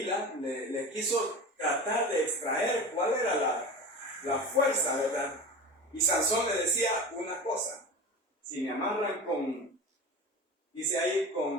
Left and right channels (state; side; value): normal; both; correlation 0.31